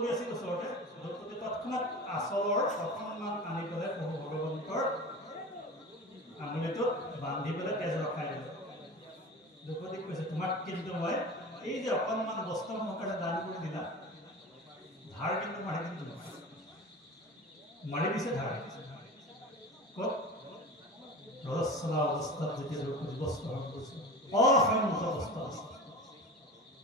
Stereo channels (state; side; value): normal; both; correlation 0.33